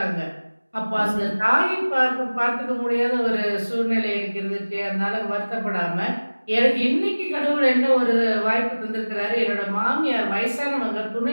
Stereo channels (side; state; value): both; inverted; correlation -1.00